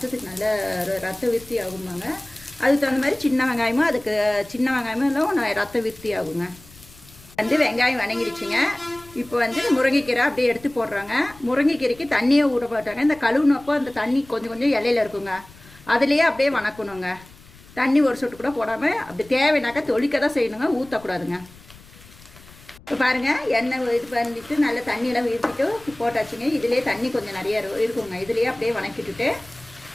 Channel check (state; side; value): noise; left; rumble, 23 dB below the sound